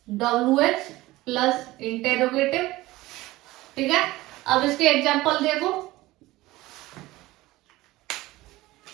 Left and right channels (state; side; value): quieter; left; 18.4 dB